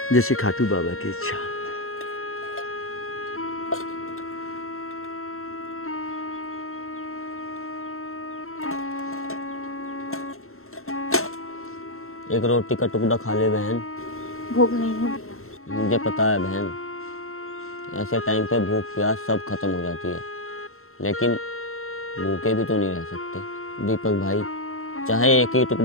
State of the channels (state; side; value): late; right; 0.62 ms